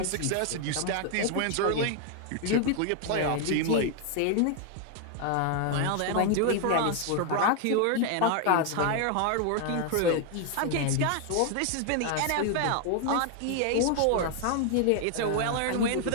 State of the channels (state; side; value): different; both; correlation 0.00